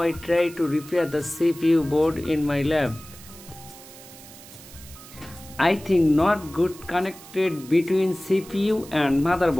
I try to repair the CPU board in my lab. I think not good connected between CPU and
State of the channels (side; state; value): right; noise; hiss, 18 dB below the sound